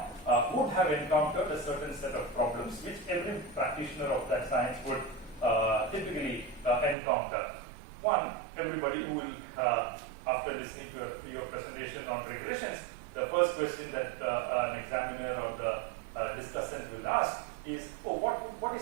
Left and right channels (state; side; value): drops out; left; at 7.0 s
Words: would have encountered a certain set of problems which every practitioner of that science would typically encounter. One, everybody who will, after listening to your presentation on regressions, the first question that an examiner or the discussant will ask is, oh, what